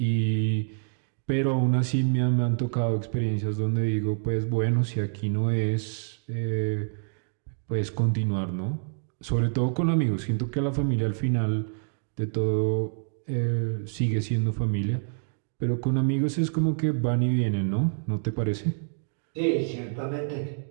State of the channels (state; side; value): silent; left; digital silence